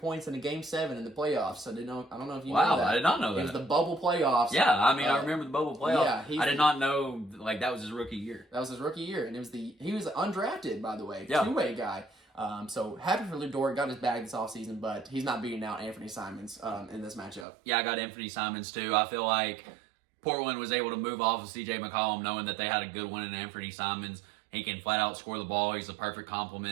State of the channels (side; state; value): left; drops out; at 17.4 s